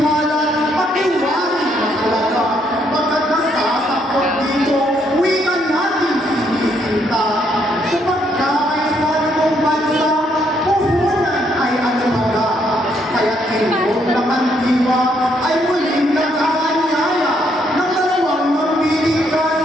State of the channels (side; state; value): both; normal; correlation 0.72